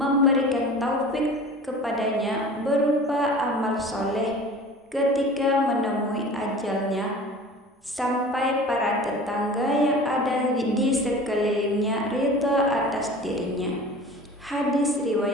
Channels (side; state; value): both; normal; correlation 0.40